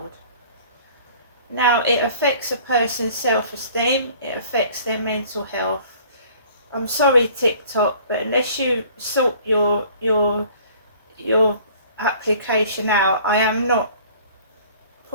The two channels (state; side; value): inverted; both; correlation -0.52